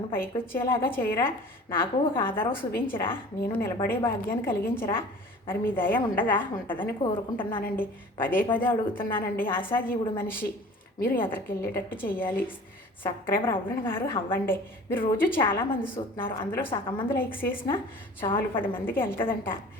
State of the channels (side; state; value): both; normal; correlation 0.44